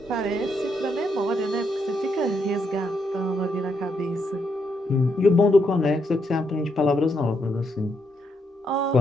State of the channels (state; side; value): normal; both; correlation 0.78